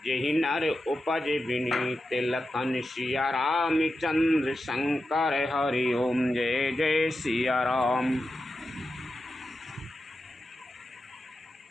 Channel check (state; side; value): normal; both; correlation 0.90